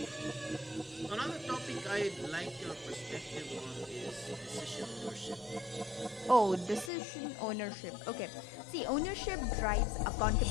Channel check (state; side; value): drops out; right; at 6.9 s